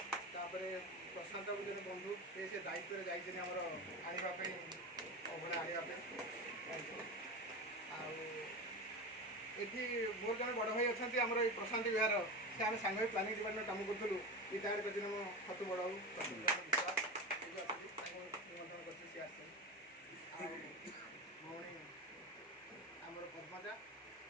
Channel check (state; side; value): normal; both; correlation 0.24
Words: आउे प्रशांत जो बंधु से दायित्व जाइए आमर आने अभड़ा आने आठी मोर जन बड़ भाई अच्छा आमर ये प्रशांत विहार से आम सांग प्लानिंग डिपार्टमेंट काम करूँ रिटायर्ड कर मो खतु बड़ भौणी आमर पद्मजा